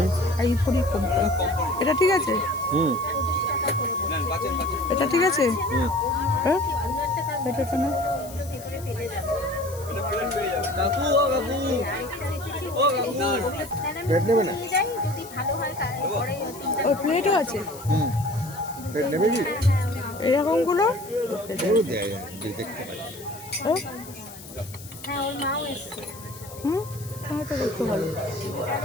আইভরি কোম্পানি। এটা ঠিক আছে? হুম এটা ঠিক আছে? হুম। হ্যাঁ এটা তো না। কাকু ও কাকু ও কাকু প্লেট নেবে না? যদি ভালো হয় তাহলে ওর প্লেটও আছে হুম। প্লেট নেবে কি? এরকমগুলো। এগুলো দেয় যে দেখতে পাই। হ্যাঁ হ্যাঁ ওর মাও এসছে হুম হ্যাঁ তো দেখতে ভালো।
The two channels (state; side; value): noise; left; hiss, 17 dB below the sound